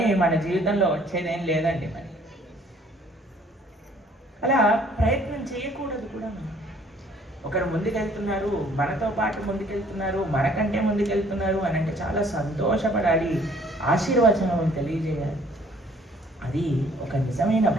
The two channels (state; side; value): normal; both; correlation 0.59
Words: మన జీవితంలో వచ్చేదేం లేదండి. మరి అలా ప్రయత్నం చేయకూడదు కూడా. మనం ఒకరు ముందుకెళ్తున్నారు, మనతో పాటు ముందుకెళ్తున్నారు, మనకంటే ముందుకెళ్తున్నారు అని అంటే చాలా సంతోషపడాలి, ఆశీర్వచనం తెలియజేయాలి. అది ఒక నిజమైన